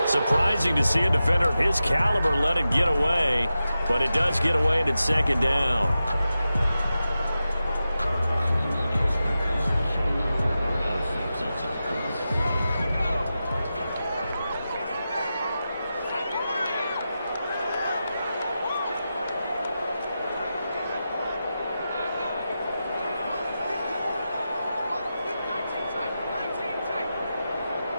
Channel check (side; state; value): both; inverted; correlation -0.92